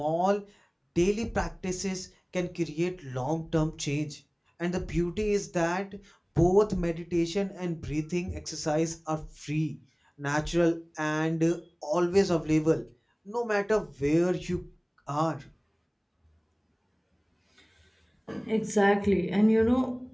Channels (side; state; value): both; identical; correlation 1.00